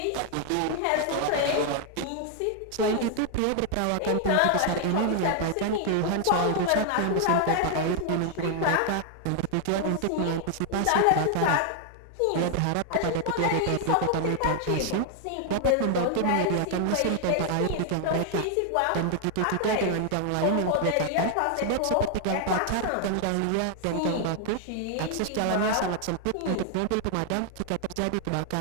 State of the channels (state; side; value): different; both; correlation 0.00